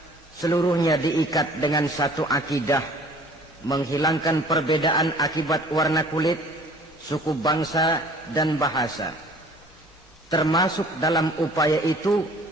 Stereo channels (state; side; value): normal; both; correlation 0.50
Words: Seluruhnya diikat dengan satu akidah, menghilangkan perbedaan akibat warna kulit, suku bangsa dan bahasa. Termasuk dalam upaya itu